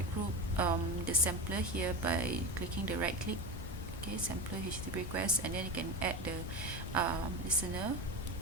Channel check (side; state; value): both; normal; correlation 0.22